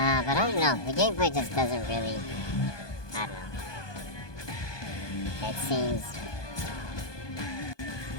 I don't know, the gameplay just doesn't really, I don't know. It seems,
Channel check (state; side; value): late; right; 1.2 ms